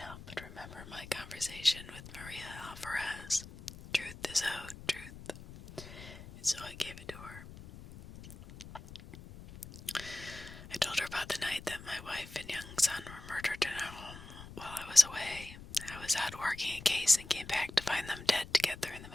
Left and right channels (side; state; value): left; noise; rumble, 15 dB below the sound